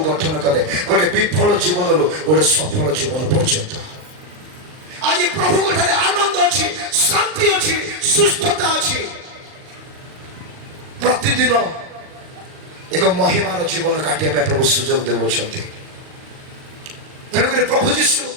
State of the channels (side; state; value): left; late; 39 ms